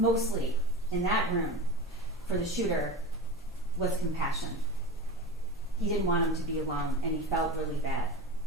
in that room for the shooter was compassion. He didn't want him to be alone, and he felt really bad.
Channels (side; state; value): both; normal; correlation 0.29